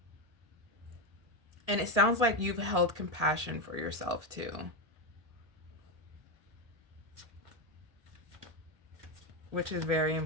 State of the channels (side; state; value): left; late; 1.7 ms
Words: And it sounds like you've held compassion for yourself too, which is very